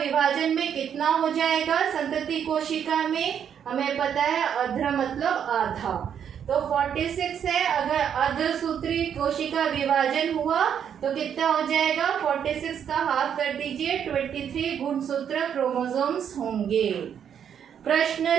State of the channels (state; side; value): quieter; left; 8.5 dB